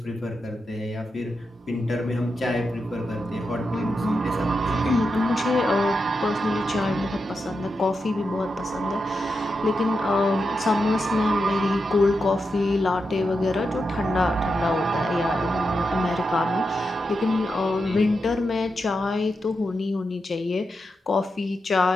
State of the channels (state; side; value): normal; both; correlation 0.87